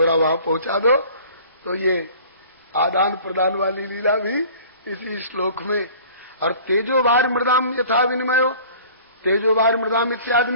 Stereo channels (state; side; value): inverted; both; correlation -0.47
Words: वहां पहुंचा दो, तो ये आदान प्रदान वाली लीला भी इसी श्लोक में। और तेजोवार मृदाम यथा विनिमयो, तेजोवार मृदाम इत्यादि